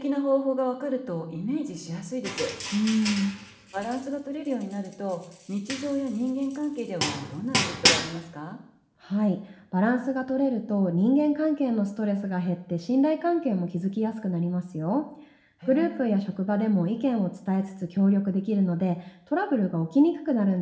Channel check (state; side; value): identical; both; correlation 1.00